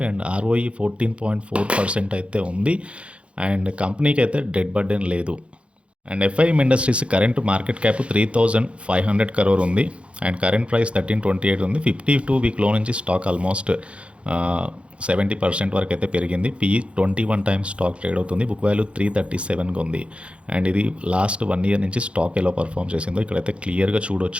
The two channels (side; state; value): left; late; 0.060 ms